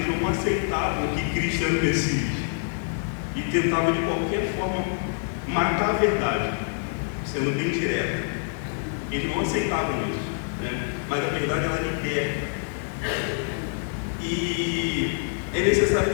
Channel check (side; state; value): right; silent; 61 dB below the other